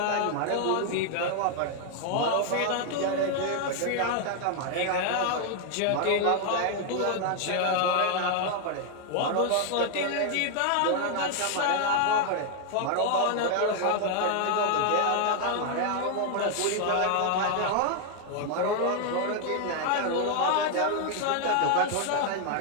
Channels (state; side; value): different; both; correlation 0.00